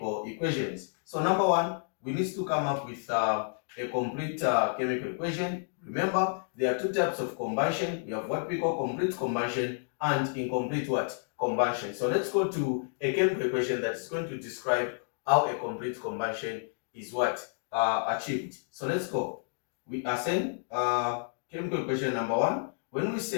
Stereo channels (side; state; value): right; silent; digital silence